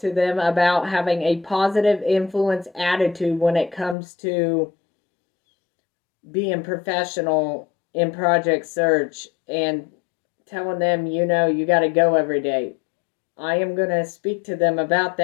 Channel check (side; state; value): right; drops out; at 4.0 s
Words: them about having a positive influence attitude when it comes to being professional in project search and telling them, you got to go every day. I am going to speak to them about